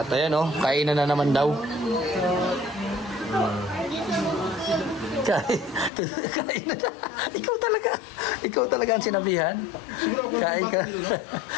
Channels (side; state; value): right; drops out; at 5.9 s